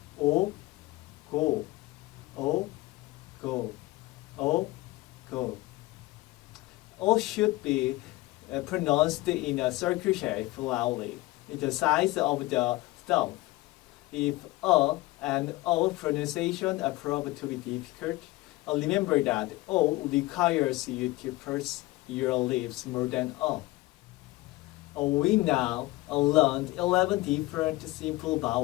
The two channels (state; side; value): quieter; right; 19.8 dB